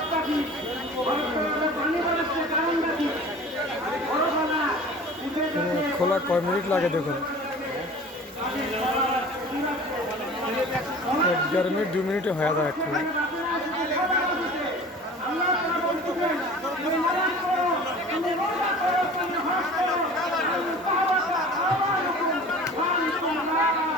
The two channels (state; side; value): normal; both; correlation 0.42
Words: খোলা কয় মিনিট লাগে দেখুন, 1-1.5 মিনিট 2 মিনিটে হয়ে যায় একটু।